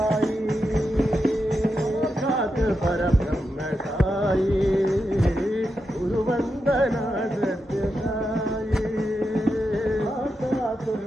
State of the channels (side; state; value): both; normal; correlation 0.87